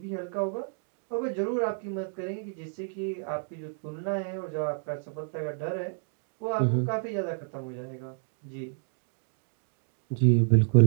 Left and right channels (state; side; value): silent; left; 58 dB below the other